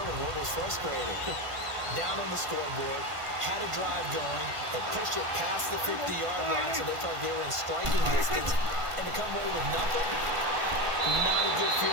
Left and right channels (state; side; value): late; left; 1.5 ms